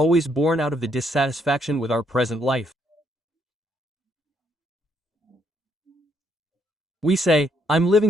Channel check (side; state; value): both; normal; correlation 0.72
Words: born out of the dissatisfaction with our present life. We say, I'm living